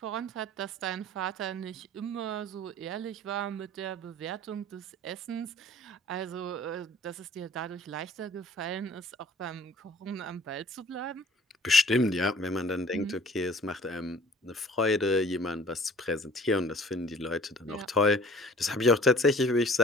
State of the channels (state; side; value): normal; both; correlation 0.50